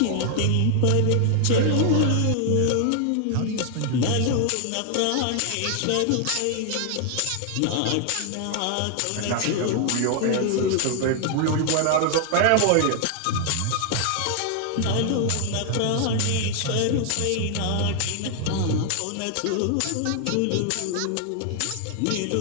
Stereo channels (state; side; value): different; both; correlation 0.00